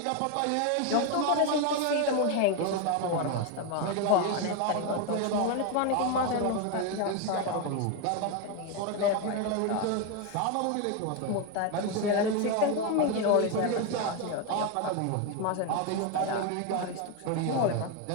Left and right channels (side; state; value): both; different; correlation 0.02